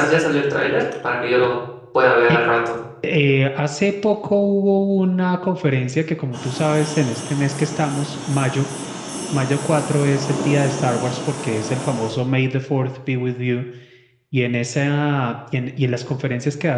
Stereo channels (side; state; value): both; identical; correlation 1.00